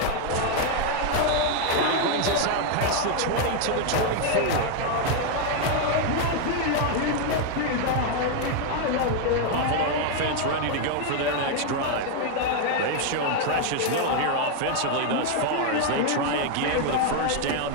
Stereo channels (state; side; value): different; both; correlation 0.00